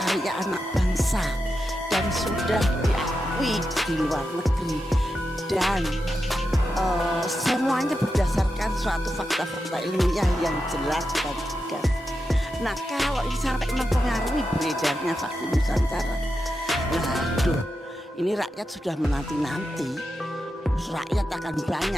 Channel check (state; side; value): normal; both; correlation 0.88